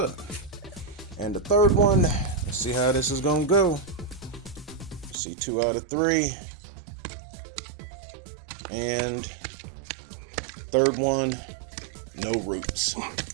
And the third one, let's see how this is gonna go. See, 2 out of 3. And third one, no roots.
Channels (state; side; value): drops out; left; at 5.2 s